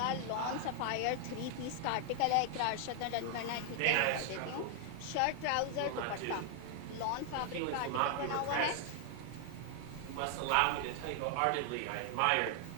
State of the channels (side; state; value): both; different; correlation 0.00